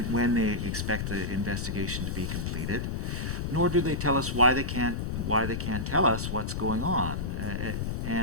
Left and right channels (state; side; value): noise; left; rumble, 2 dB below the sound